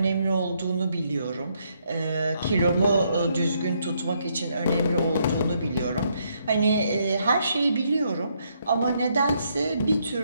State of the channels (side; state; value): both; inverted; correlation -0.74